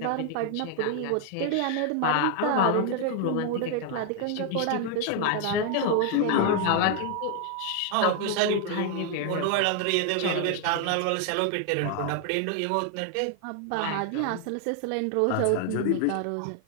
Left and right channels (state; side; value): different; both; correlation 0.00